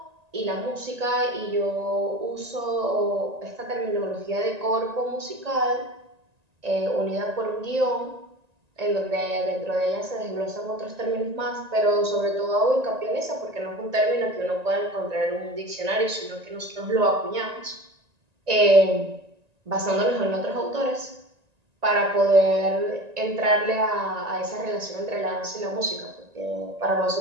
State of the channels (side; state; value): left; late; 1.9 ms